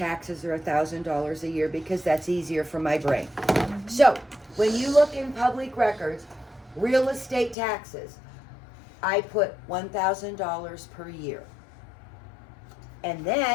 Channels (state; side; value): drops out; right; at 7.6 s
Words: are $1,000 a year because that's easier for my brain. So, when you look in public records, real estate taxes, I put $1,000 per year. And